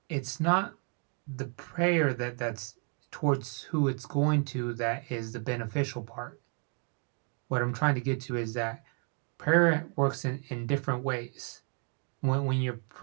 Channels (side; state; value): left; quieter; 37.8 dB